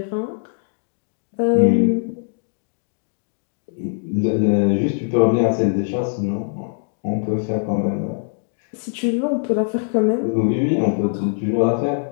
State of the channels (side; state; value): right; silent; digital silence